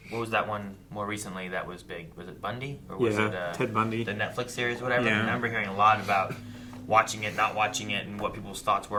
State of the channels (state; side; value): identical; both; correlation 1.00